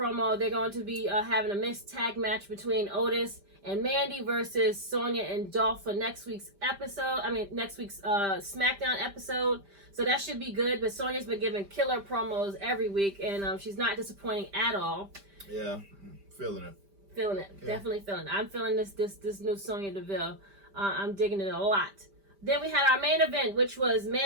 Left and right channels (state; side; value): late; left; 5.0 ms